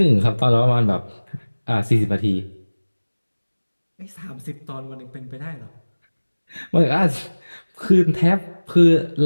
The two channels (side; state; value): both; inverted; correlation -1.00